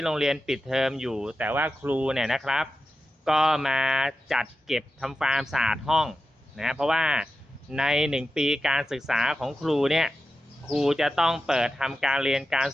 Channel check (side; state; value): both; normal; correlation 0.92